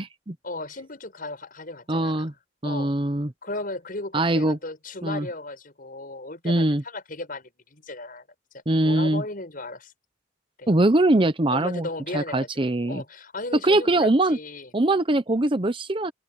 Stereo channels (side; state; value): both; normal; correlation 0.63